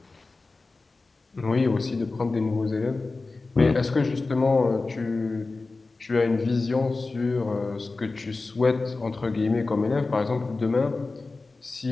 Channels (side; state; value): right; quieter; 3.6 dB